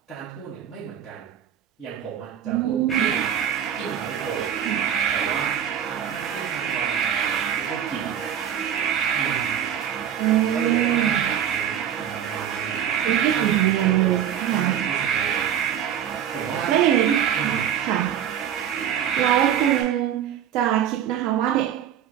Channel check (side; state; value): left; quieter; 9.5 dB